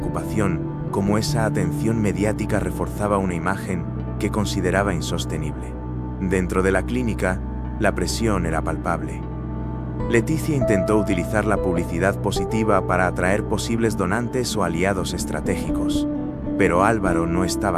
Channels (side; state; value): both; identical; correlation 1.00